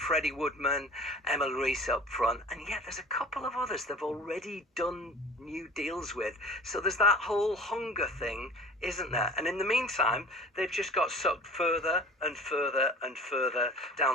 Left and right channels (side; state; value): both; normal; correlation 0.42